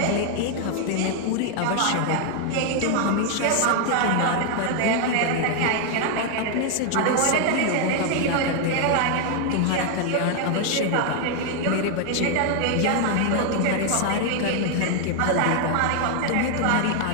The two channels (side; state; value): both; different; correlation 0.00